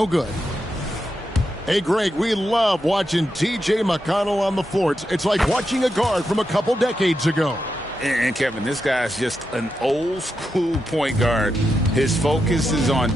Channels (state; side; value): normal; both; correlation 0.86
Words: good. Hey, Greg, we love watching T.J. McConnell on the floor. It's like watching a guard from a couple decades ago. And Kevin, this guy's just an old school point guard. His focus is on